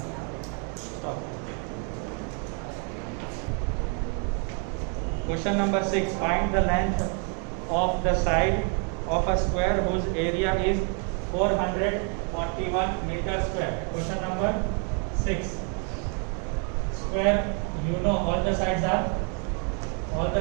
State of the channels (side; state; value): left; quieter; 39.5 dB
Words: Stop. Question number 6. Find the length of the side of a square whose area is 441 meter square. Question number 6. Square, you know all the sides are of